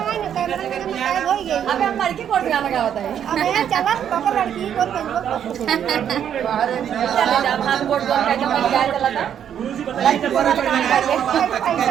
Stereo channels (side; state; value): left; quieter; 9.2 dB